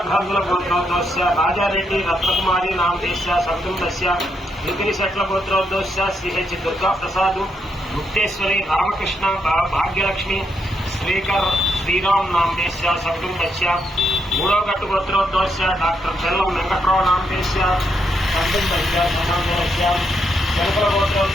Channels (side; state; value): both; normal; correlation 0.79